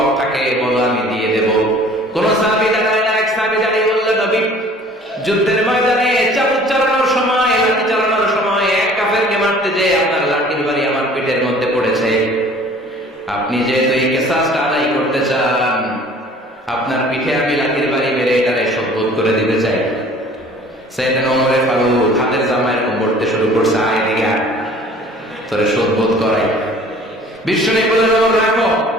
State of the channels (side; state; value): both; normal; correlation 0.50